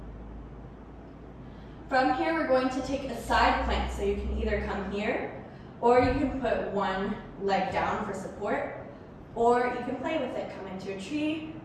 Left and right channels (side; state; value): both; identical; correlation 1.00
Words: From here, we're going to take a side plank. So you can either come here, or you can put one leg down for support, or you can play with it. Come into a tree,